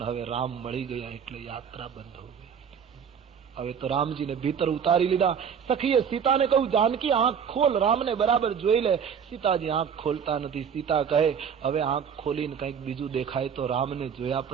હવે રામ મળી ગયા એટલે યાત્રા બંધ હો ગઈ. હવે તો રામજીને ભીતર ઉતારી લીધા. સખીએ સીતાને કહ્યું જાનકી આંખ ખોલ, રામને બરાબર જોઈ લે. સીતાજી આંખ ખોલતા નથી. સીતા કહે હવે આંખ ખોલીને કંઈક બીજું દેખાય તો રામને જોયા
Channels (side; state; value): left; quieter; 7.4 dB